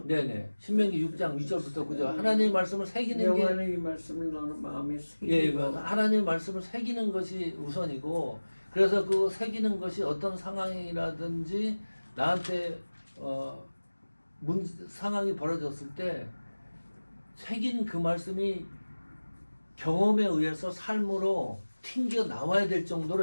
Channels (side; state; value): both; inverted; correlation -1.00